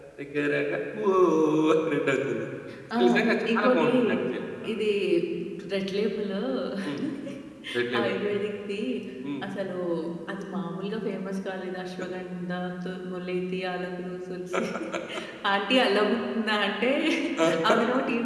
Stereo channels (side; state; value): both; identical; correlation 1.00